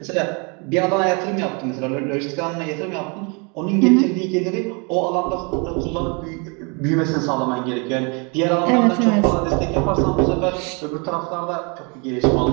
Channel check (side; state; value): left; quieter; 32.9 dB